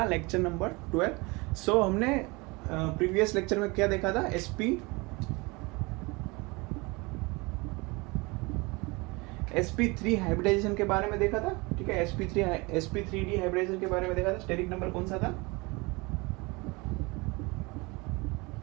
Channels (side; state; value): left; quieter; 25.8 dB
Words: लेक्चर नंबर 12। सो हमने प्रीवियस लेक्चर में क्या देखा था, sp3 हाइब्रिडाइजेशन के बारे में देखा था। ठीक है, sp3d हाइब्रिडाइजेशन के बारे में देखा था। स्टेरिक नंबर कौन सा था?